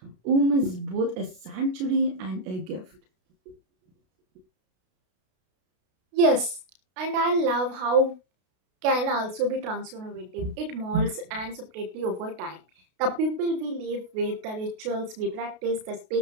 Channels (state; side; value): late; left; 32 ms